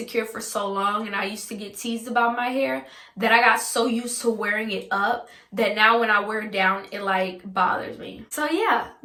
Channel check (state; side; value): identical; both; correlation 1.00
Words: for so long and I used to get teased about my hair that I got so used to wearing it up that now when I wear it down, it like bothers me. So yeah,